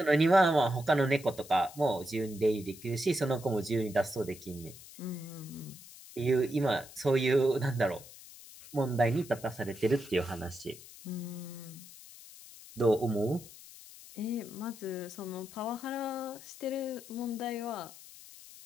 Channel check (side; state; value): left; noise; hiss, 18 dB below the sound